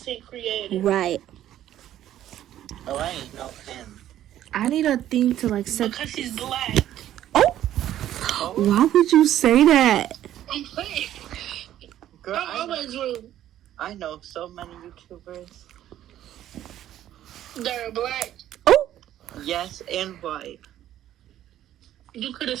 creator. Right. Oh, I ain't know him. I need a thing to like set. Because he's black. Oh, why would you say that? I'm playing. Girl, I'm always rude. I know so many YouTubers. They're black. Oh, Yes, and white. You could have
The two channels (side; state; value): left; quieter; 12.2 dB